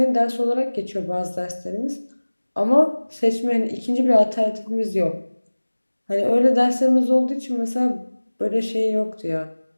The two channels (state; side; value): inverted; both; correlation -1.00